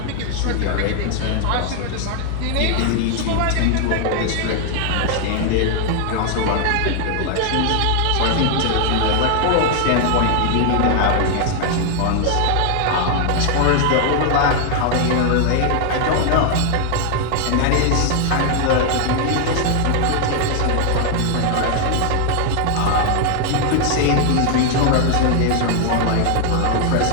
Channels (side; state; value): both; different; correlation 0.00